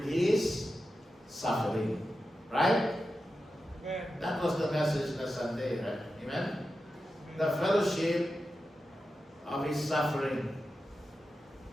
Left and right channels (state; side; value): normal; both; correlation 0.91